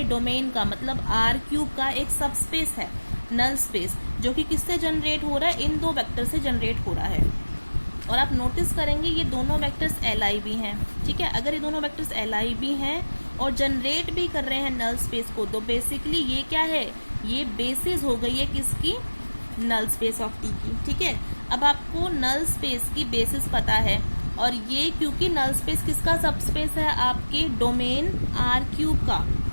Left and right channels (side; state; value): both; inverted; correlation -1.00